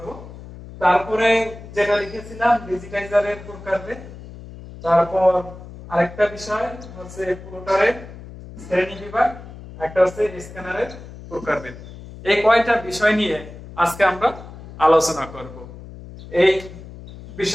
তারপরে যেটা লিখেছিলাম ডিজিটাইজারের প্রকারভেদ। তারপর আরেকটা বিষয় হচ্ছে প্লটারের শ্রেণী বিভাগ, একটা হচ্ছে স্ক্যানারের প্রকারভেদ। এই কয়টা বিষয় নিয়ে আজকে আমরা আলোচনা করব। এই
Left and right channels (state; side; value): noise; left; hum, 15 dB below the sound